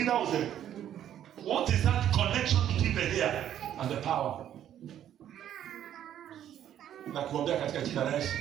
What is that connection between the hair and the power? Na kuombea katika jina la Yesu.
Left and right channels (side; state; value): left; quieter; 10.7 dB